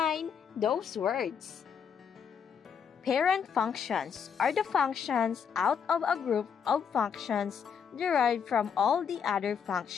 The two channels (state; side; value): quieter; right; 7.2 dB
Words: those words. Parent functions are the functions out of a group of functions derived from all the other